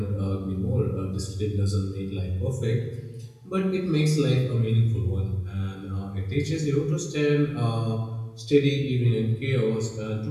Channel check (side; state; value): both; identical; correlation 1.00